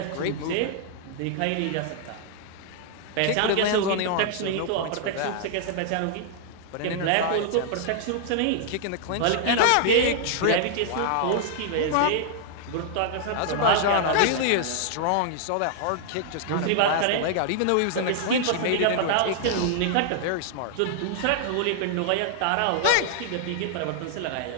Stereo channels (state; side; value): different; both; correlation -0.01